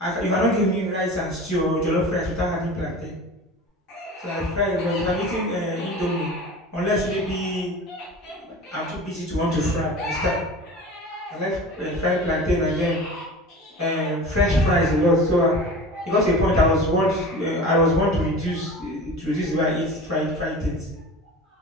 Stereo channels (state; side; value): normal; both; correlation 0.36